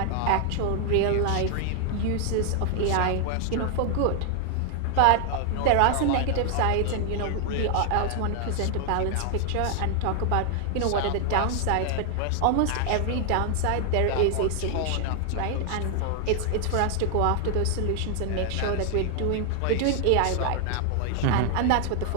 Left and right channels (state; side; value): different; both; correlation 0.00